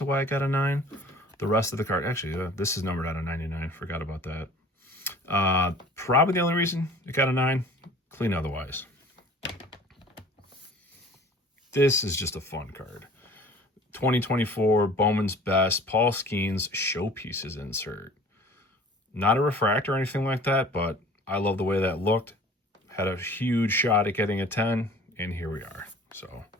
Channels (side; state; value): both; normal; correlation 0.47